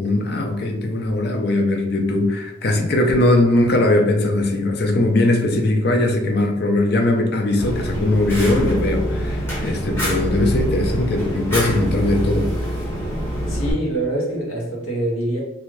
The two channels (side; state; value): both; normal; correlation 0.65